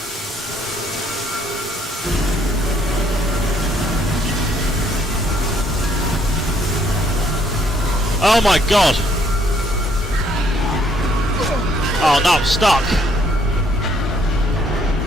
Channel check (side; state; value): both; normal; correlation 0.66